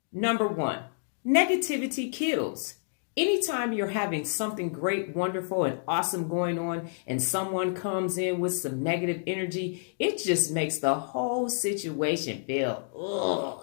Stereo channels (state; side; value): silent; right; digital silence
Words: Number 1, negativity kills. Anytime you're having something great, wonderful, and awesome going on, and someone comes in with some negative energy, it just makes the whole situation feel,